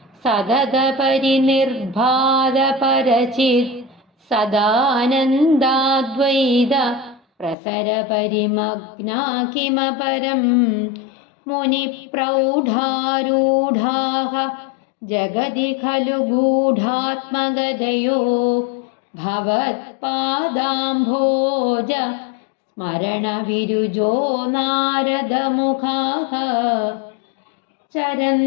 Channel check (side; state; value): right; drops out; at 7.6 s